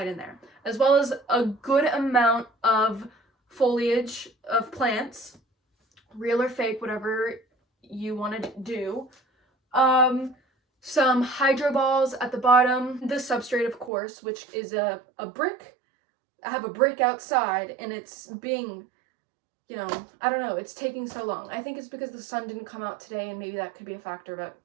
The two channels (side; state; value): left; drops out; at 13.9 s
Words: in there. As well as a good amount of foliage of plants, real or fake, whatever you want to do. Some hydro balls at the bottom. The substrate, of course, which is a brick. I have a brick outside, and it's being, I don't know, it's taking so long. I think it's because the sun didn't come out today, and maybe that could be a factor, but